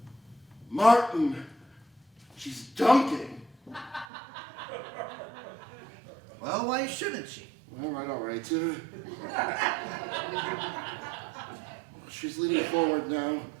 Martin. She's dunking. Well, why shouldn't she? All right. She's leaning forward now.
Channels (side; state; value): left; drops out; at 4.0 s